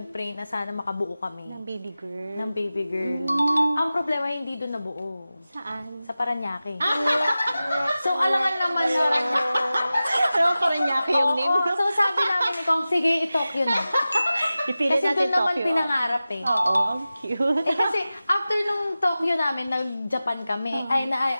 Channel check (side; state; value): both; inverted; correlation -0.95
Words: na sana makabuo kami. Ng baby girl. Ng baby girl. Ang problema, hindi doon nabuo. Saan? Sa Paranaque. So, alangan naman na. Pero parang niya yung name. So, sabi namin ni Kong, sige, i-Tokyo na. Ipilit Kasi natin doon naman Tokyo. pinangarap eh. Oo, ang cute. Kasi after nung Tokyo namin, nag-Japan kami.